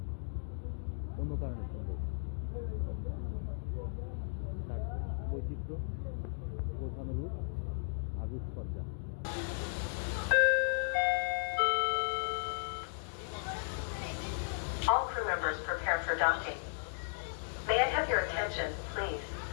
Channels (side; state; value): right; silent; digital silence